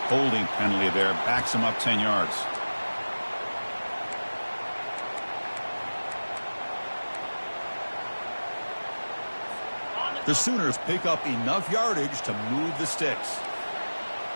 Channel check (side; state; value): both; inverted; correlation -1.00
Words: holding penalty there. Backs him up 10 yards. The Sooners pick up enough yardage to move the sticks.